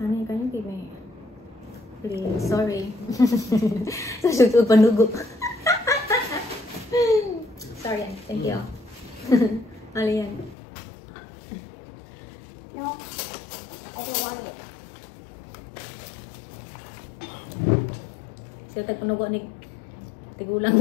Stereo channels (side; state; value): right; drops out; at 10.6 s